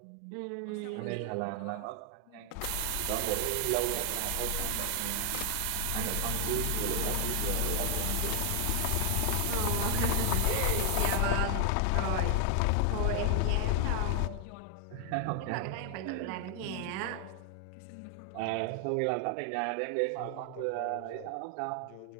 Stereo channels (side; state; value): both; different; correlation 0.00